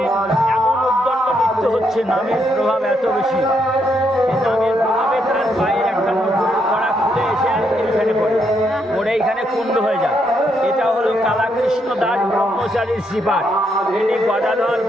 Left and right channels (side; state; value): both; normal; correlation 0.77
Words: এমন উদ্দণ্ড নৃত্য হচ্ছে, নামের প্রভাব এত বেশি, সেই নামের প্রভাবে তার পায়ের একটা নুপুরের কড়া খুলে এসে এখানে পড়ে, পড়ে এইখানে কুণ্ড হয়ে যায়। এটা হলো কালাকৃষ্ণ দাস ব্রহ্মচারীর শ্রীপাঠ। ইনি গদাধর